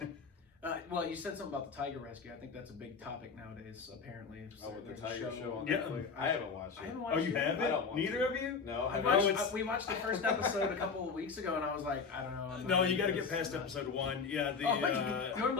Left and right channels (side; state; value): right; quieter; 5.3 dB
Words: Yeah. Well, you said something about the tiger rescue. I think that's a big topic nowadays, apparently. Oh, with the There's a tiger show on Yeah. Netflix? I haven't watched it. I haven't Oh, watched you it. I haven't? don't want Neither to. of you? No, I I watched- haven't. we watched the first episode a couple of weeks ago, and I was like, I don't know. I'm No, not you got to into get this. past episode 1. Yeah,